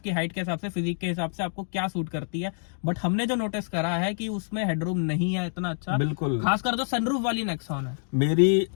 हाइट के हिसाब से, फिजिक के हिसाब से आपको क्या सूट करती है। बट हमने जो नोटिस करा है कि उसमें हेडरूम नहीं है इतना अच्छा, बिल्कुल, खासकर जो सनरूफ वाली नेक्सॉन है। मेरी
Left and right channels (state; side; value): silent; right; digital silence